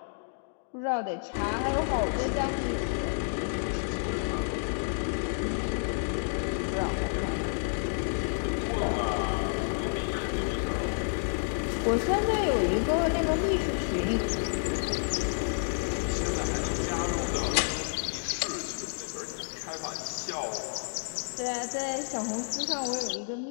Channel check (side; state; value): right; silent; digital silence